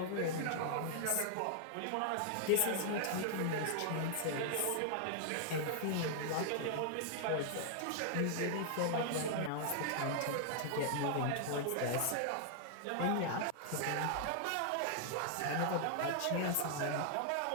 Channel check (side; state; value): both; different; correlation -0.01